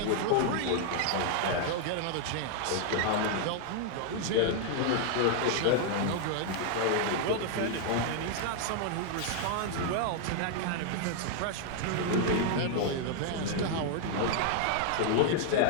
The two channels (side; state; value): both; different; correlation 0.00